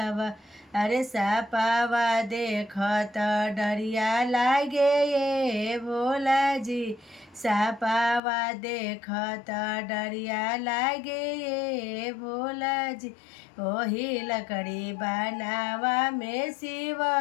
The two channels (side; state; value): right; drops out; at 8.2 s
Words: अरे सापावा देखत डरिया लागे ये भोला जी। सापावा देखत डरिया लागे ये भोला जी। ओही लकड़ी बनावा में शिव